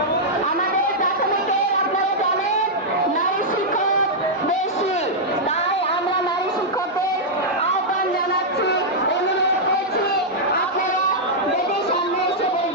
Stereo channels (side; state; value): both; normal; correlation -0.06